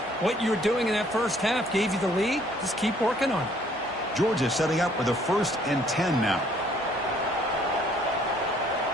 What you were doing in that first half gave you the lead. Just keep working on it. Georgia setting up for the 1st and 10 now.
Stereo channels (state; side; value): normal; both; correlation 0.62